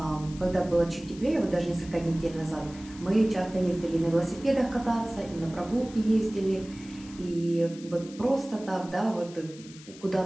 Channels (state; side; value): noise; left; hiss, 19 dB below the sound